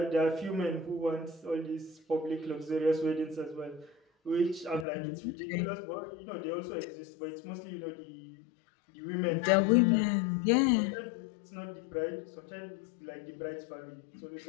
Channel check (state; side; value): drops out; right; at 4.9 s